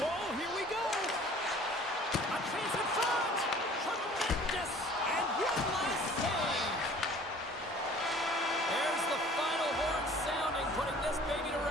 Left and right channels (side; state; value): both; normal; correlation 0.50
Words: here we go. A chance in front. Tremendous. And one last save. There's the final horn sounding, putting this baby to